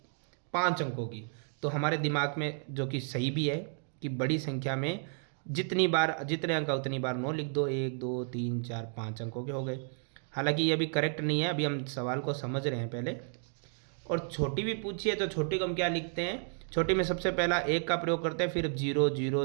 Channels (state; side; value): silent; left; 56 dB below the other